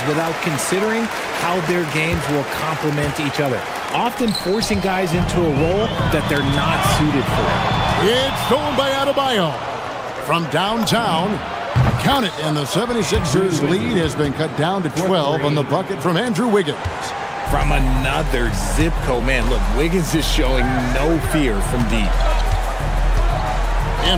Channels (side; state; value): both; identical; correlation 1.00